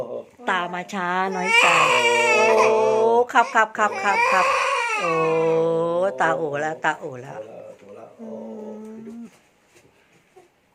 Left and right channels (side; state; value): both; identical; correlation 1.00